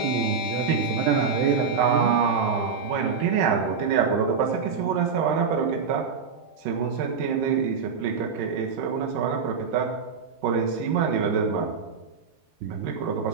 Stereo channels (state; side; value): quieter; left; 5.7 dB